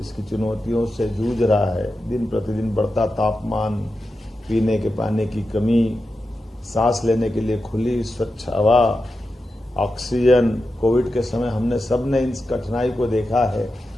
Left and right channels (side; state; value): both; normal; correlation 0.90